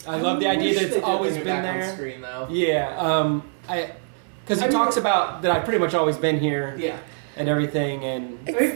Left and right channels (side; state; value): left; silent; 63 dB below the other